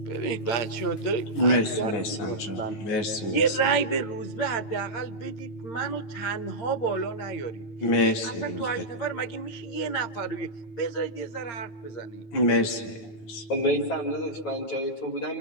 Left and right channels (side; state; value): right; late; 9.3 ms